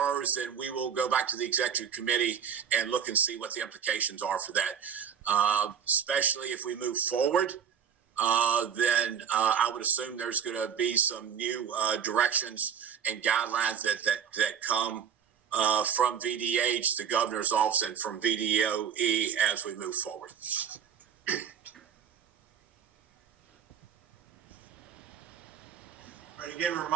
then we will go back to the executive committee and look and see what the implications are for that. Especially if we move forward, then I would assume there's going to be some new directions and guidelines that come from VDH, the governor's office, and from VDOE as we move forward. All right, again,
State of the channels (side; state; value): left; quieter; 7.9 dB